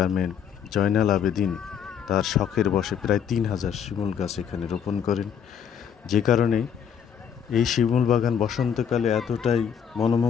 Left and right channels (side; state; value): right; quieter; 8.0 dB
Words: জয়নাল আবেদিন তার শখের বশে প্রায় 3000 শিমুল গাছ এখানে রোপণ করেন। যে কারণে এই শিমুল বাগান বসন্তকালে এতটাই